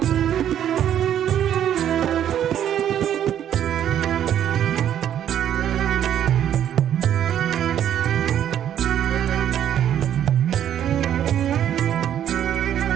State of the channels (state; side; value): quieter; left; 10.2 dB